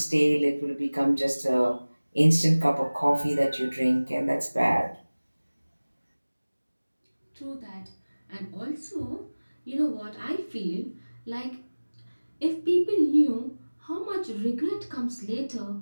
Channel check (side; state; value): both; inverted; correlation -1.00